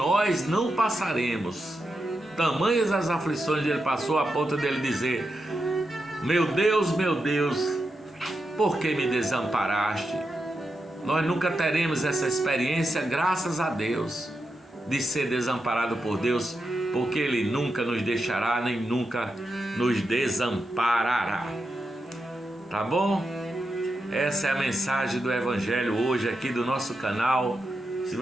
não passaremos. Tamanhas as aflições que Ele passou, a ponto dele dizer: meu Deus, por que me desamparaste? Nós nunca teremos essa experiência, graças a Deus, de ser desamparado por Deus, porque Ele nunca nos deixará, nem nunca nos desamparará. Tá bom? Essa é a mensagem do Evangelho hoje aqui do nosso canal. Se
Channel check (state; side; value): normal; both; correlation 0.87